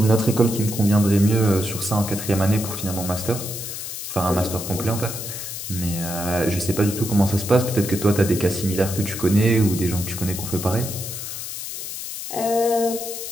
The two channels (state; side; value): noise; left; hiss, 7 dB below the sound